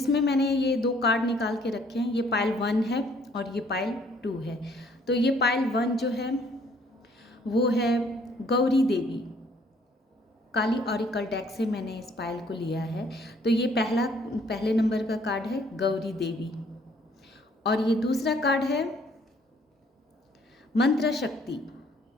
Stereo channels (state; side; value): normal; both; correlation 0.61